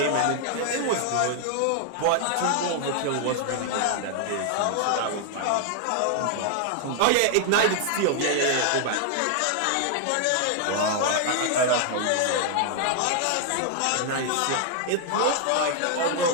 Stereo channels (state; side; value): different; both; correlation 0.00